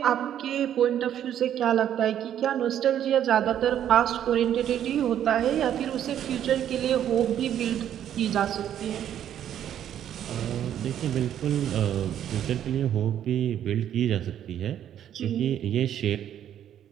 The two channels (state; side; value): quieter; left; 10.4 dB